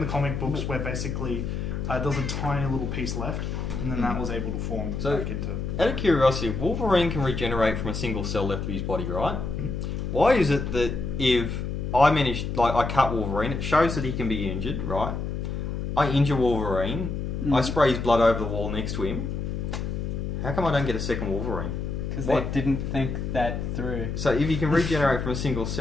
comic books where basically there was a tiny little piece left, and then that was able to form back into... Out of curiosity, if Wolverine can regenerate from a single cell left of his body, right? Why is it that if I cut Wolverine, it shows that he can be injured, right? I injure Wolverine, I spray his blood over the wall next to him. How come I don't get a second Wolverine? Because they didn't think that through. So if he can regenerate from a single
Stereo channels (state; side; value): noise; left; hum, 3 dB below the sound